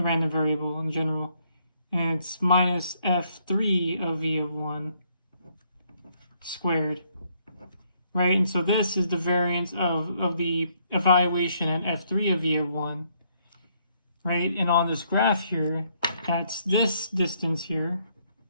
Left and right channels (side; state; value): both; inverted; correlation -0.70